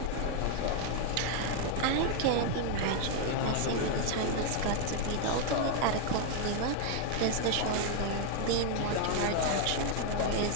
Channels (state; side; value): different; both; correlation 0.00